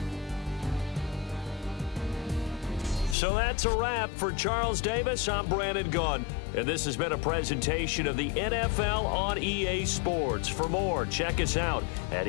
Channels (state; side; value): drops out; right; at 3.2 s